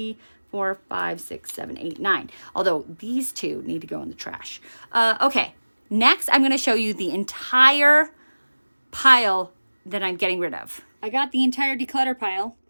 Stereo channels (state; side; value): inverted; both; correlation -1.00